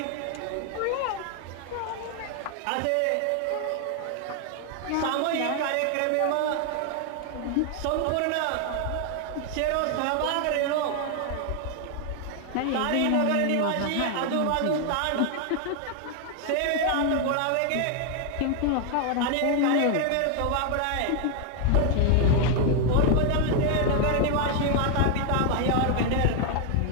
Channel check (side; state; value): both; different; correlation 0.00